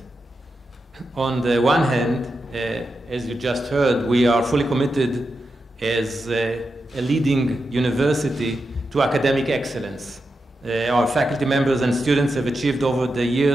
On the one hand, as you just heard, we are fully committed as a leading university to academic excellence. Our faculty members and students have achieved over the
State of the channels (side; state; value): both; normal; correlation 0.88